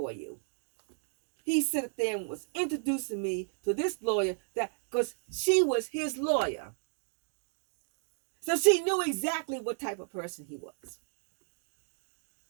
you. He sat there and was introducing me to this lawyer because she was his lawyer. So she knew exactly what type of person he was.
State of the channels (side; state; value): left; silent; 56 dB below the other